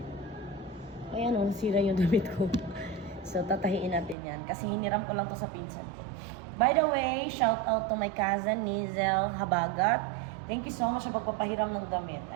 Ayan o, nasira yung damit ko. So tatahiin natin yan. Kasi hiniram ko lang to sa pinsan ko. By the way, shout out to my cousin, Nizel Habagat. Thank you so much sa pagpapahiram ng damit.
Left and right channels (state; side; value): drops out; left; at 4.2 s